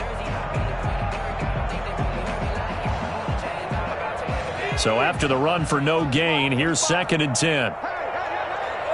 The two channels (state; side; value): identical; both; correlation 1.00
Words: So after the run for no gain, here's 2nd and 10.